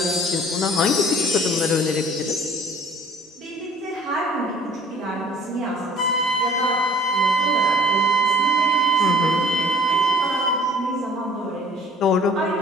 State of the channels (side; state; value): both; normal; correlation 0.51